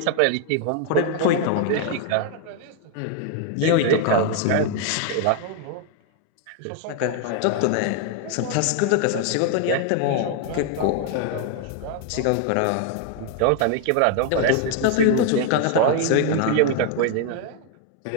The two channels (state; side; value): different; both; correlation 0.00